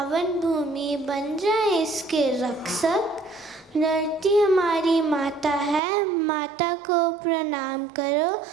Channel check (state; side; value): drops out; left; at 5.8 s